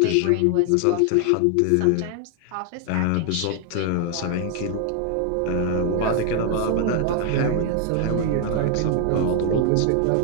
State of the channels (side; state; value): both; different; correlation 0.00